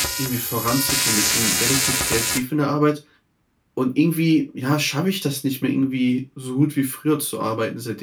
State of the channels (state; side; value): identical; both; correlation 1.00